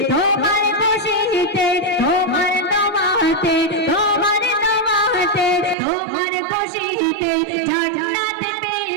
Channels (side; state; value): left; drops out; at 5.8 s